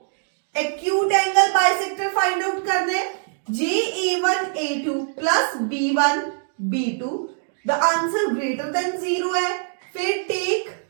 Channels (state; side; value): silent; left; digital silence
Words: acute angle bisector find out करना है जे a1 a2 प्लस b1 b2 the answer greater than 0 है। फिर टेक